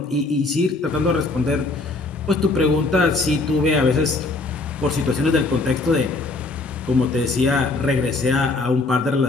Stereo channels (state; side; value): quieter; right; 3.4 dB